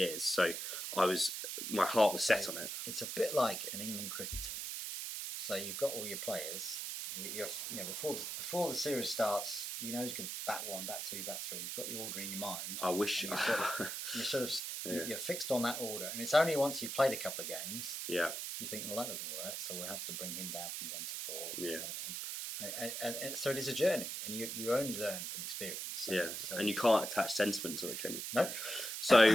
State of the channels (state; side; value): noise; right; hiss, 4 dB below the sound